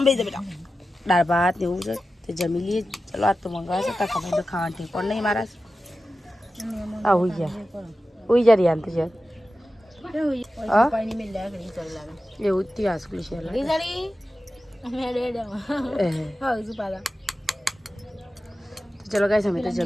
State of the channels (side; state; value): both; normal; correlation 0.93